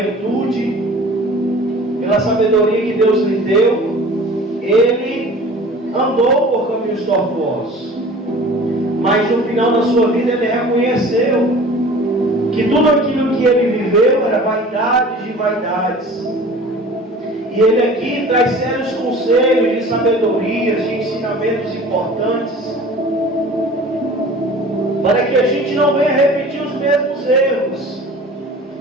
pela sabedoria que Deus lhe deu, ele andou por caminhos tortuosos. Mas no final da sua vida ele reconheceu que tudo aquilo que ele viveu era vaidade de vaidades. E ele aqui traz sérios conselhos de sabedoria, de ensinamentos importantes, para que a gente não venha repetir os mesmos erros.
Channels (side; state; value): both; normal; correlation 0.44